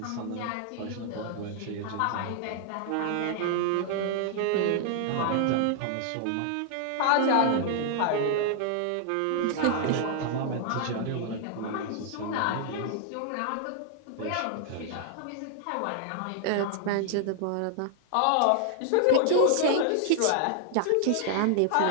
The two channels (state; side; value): different; both; correlation 0.00